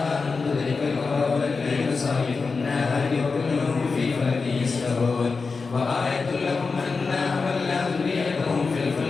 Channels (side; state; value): right; quieter; 4.5 dB